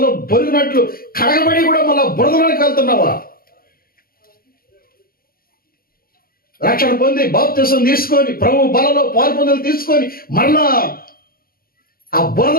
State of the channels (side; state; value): right; late; 0.43 ms